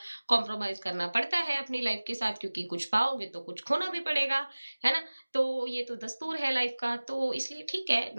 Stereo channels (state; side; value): inverted; both; correlation -1.00